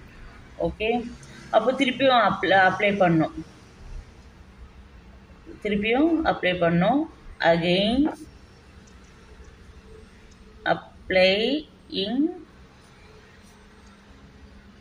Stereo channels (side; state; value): both; identical; correlation 1.00